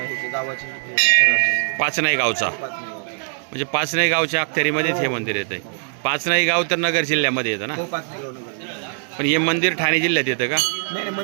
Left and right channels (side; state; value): left; silent; digital silence